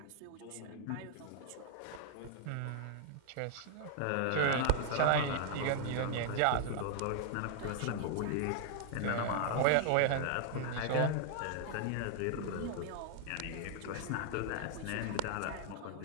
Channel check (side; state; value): both; different; correlation 0.00